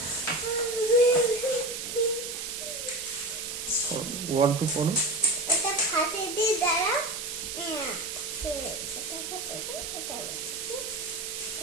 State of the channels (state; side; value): noise; right; hiss, 6 dB below the sound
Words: ওয়ান টু পড়ো।